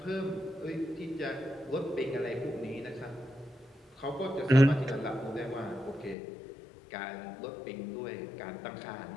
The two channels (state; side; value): drops out; right; at 6.2 s